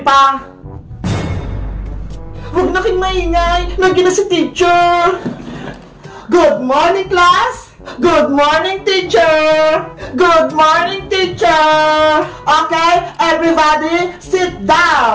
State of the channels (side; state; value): both; identical; correlation 1.00